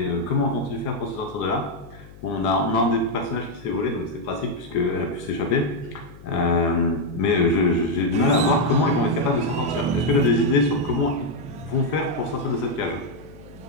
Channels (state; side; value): noise; left; hum, 20 dB below the sound